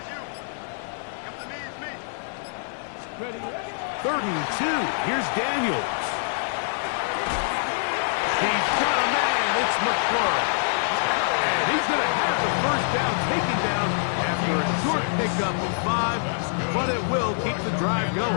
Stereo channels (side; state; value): right; silent; 60 dB below the other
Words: Ready, ready. 3rd and 2. Here's Daniels. He's got a man. It's McClure. And he's going to have the 1st down taken down after a short pickup of 5, but it will keep the drive